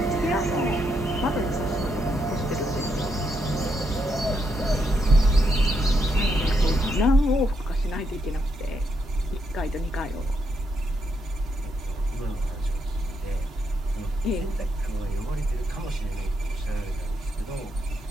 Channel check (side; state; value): both; normal; correlation 0.79